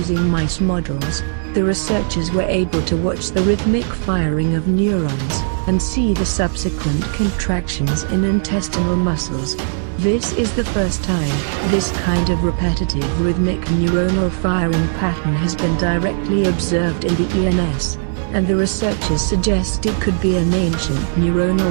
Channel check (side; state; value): left; silent; 61 dB below the other